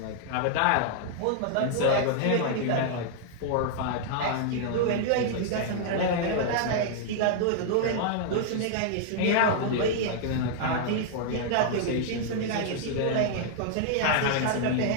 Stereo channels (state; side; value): different; both; correlation -0.01